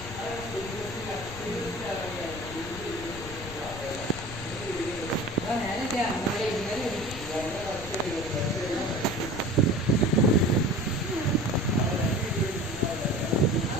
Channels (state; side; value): noise; left; rumble, 12 dB below the sound